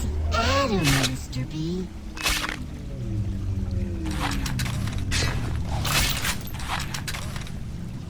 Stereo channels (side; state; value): both; identical; correlation 1.00